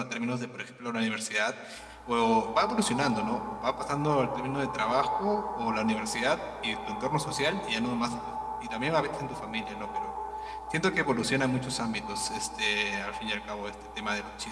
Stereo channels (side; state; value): both; identical; correlation 1.00